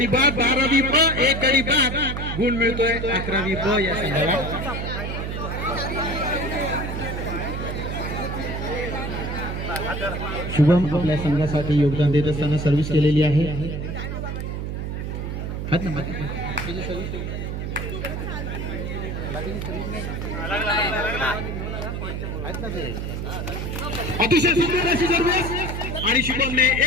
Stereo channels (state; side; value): noise; right; hum, 4 dB below the sound